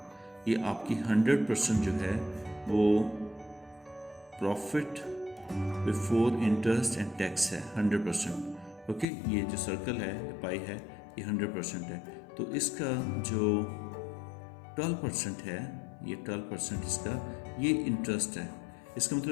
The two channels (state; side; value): drops out; right; at 9.1 s